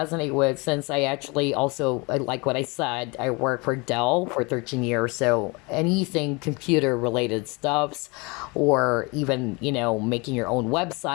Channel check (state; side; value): quieter; right; 27.8 dB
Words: with, since I actually also, like what I said, I worked for Dell for 13 years. So anything computer related stuffs, or even making your own